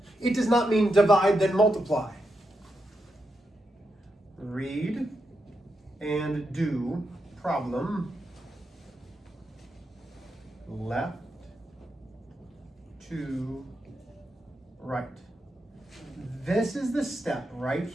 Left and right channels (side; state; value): both; normal; correlation 0.85